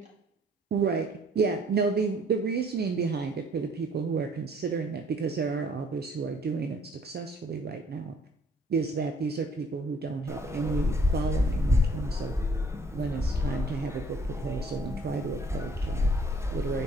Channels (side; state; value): both; normal; correlation 0.59